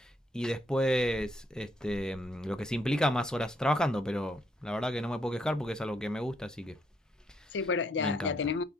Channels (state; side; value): normal; both; correlation 0.72